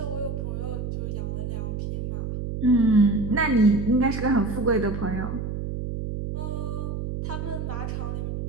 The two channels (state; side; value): noise; right; hum, 4 dB below the sound